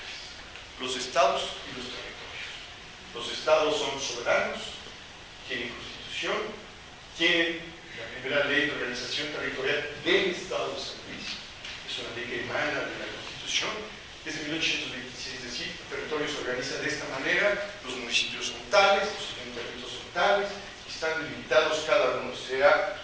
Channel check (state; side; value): identical; both; correlation 1.00